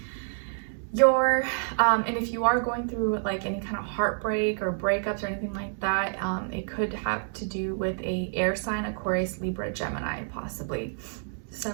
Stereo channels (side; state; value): left; silent; 59 dB below the other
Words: and if you are going through like any kind of heartbreak or breakups or anything like that, it could have to do with a air sign, Aquarius, Libra, Gemini, possibly